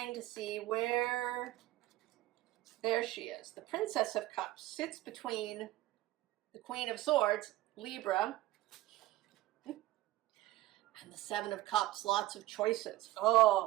to see where, there she is. The Princess of Cups sits between the Queen of Swords, Libra, and the Seven of Cups, lots of choices.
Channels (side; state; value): left; quieter; 16.6 dB